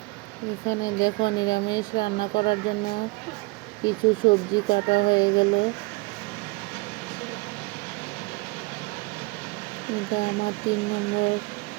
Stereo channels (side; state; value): left; quieter; 26.2 dB